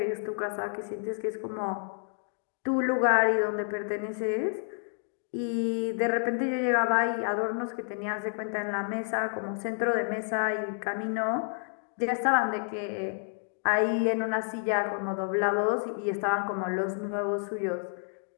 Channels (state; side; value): silent; right; 58 dB below the other